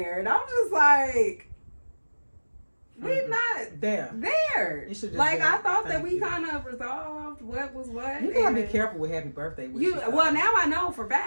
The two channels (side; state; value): both; inverted; correlation -1.00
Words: and I'm just like. We're not there. Like, I thought that we kind of resolved what was what. You gotta be careful with happy birthday wishes. Well, now I know for